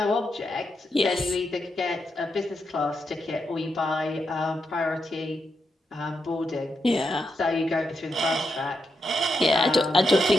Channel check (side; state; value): both; normal; correlation 0.84